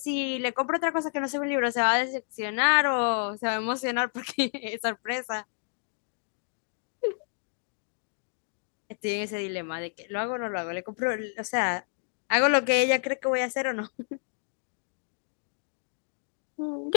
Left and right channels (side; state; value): right; silent; digital silence